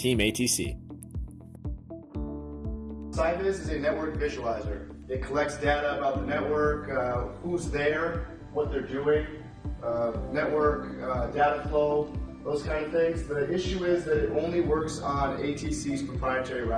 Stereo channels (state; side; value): identical; both; correlation 1.00